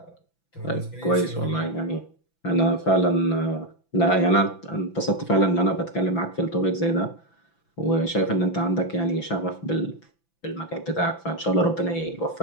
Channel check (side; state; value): right; late; 6.0 ms